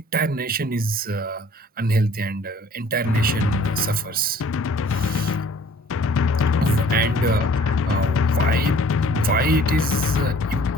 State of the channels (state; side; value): normal; both; correlation 0.54